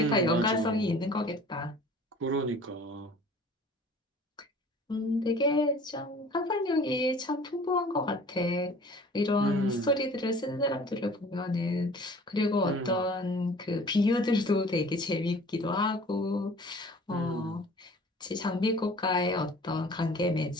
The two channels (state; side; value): normal; both; correlation 0.48